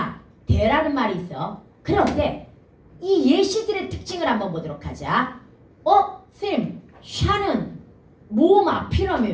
대라는 말이 있어. 그런데 이 예시들의 특징을 한번 보도록 하자. 쌤 샤는 모음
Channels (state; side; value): identical; both; correlation 1.00